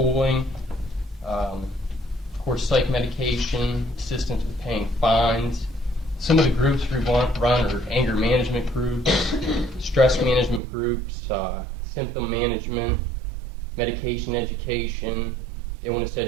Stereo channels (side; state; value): left; drops out; at 10.6 s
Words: of course psych medication, assistance with paying fines. Some of the groups we run are anger management groups, stress management groups, symptom management, medication education, illness